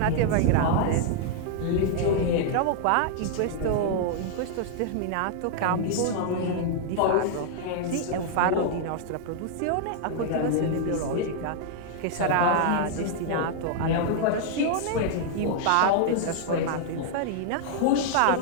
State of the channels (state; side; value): different; both; correlation -0.01